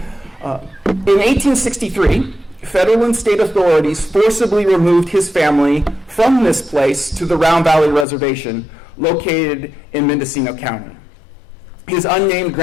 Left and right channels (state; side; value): drops out; right; at 8.1 s